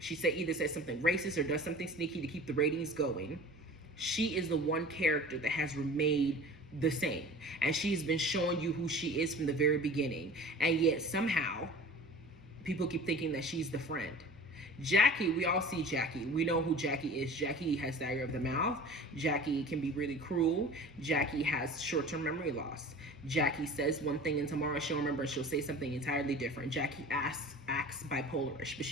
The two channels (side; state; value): both; normal; correlation 0.41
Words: she either says something racist or does something sneaky to keep the ratings going. She is the one character that has remained the same. And she's been showing you who she is from the very beginning. And yet somehow people keep thinking that she's the friend. Jackie, we all see Jackie. We know who Jackie is. Jackie has diarrhea of the mouth. Jackie can be really cruel. Jackie has short-term memory loss. Jackie says one thing and tomorrow she'll remember and she'll say something entirely different. Jackie acts bipolarish, but